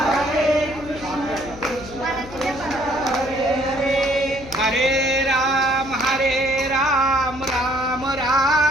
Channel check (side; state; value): left; noise; hum, 15 dB below the sound